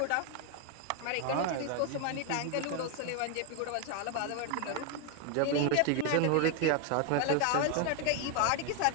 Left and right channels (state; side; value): different; both; correlation 0.01